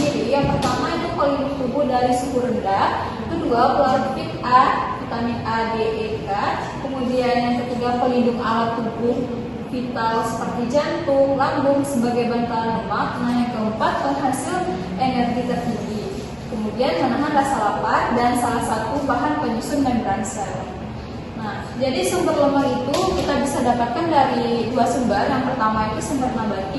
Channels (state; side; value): identical; both; correlation 1.00